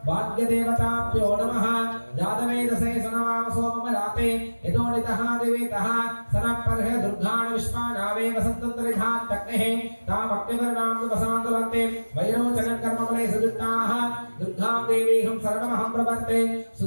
भाग्यदेवताभ्यो नमः जातवेदसे सनवाम सोममलाते यतोनितः दिवेतः सनपर्ह दुर्गान् विश्वानावे वसन्तन्तरिधात् तक्नेः तामग्निवर्णां विवसान्तुलन्ते वैरोचनकर्मफले सजुष्टाः दुर्गां देवीहं सर्वमहं प्रपत्ते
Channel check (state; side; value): inverted; both; correlation -1.00